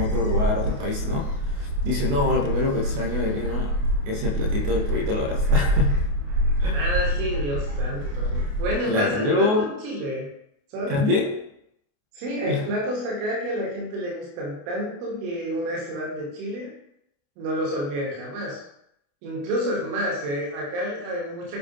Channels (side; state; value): left; late; 28 ms